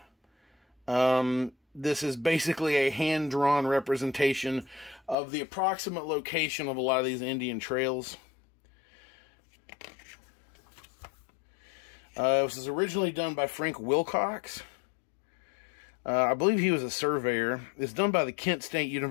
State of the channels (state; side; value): drops out; right; at 5.2 s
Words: This is basically a hand-drawn representation of the approximate location of a lot of these Indian trails. This was originally done by Frank Wilcox. I believe he was a surveyor. It's done by the Kent State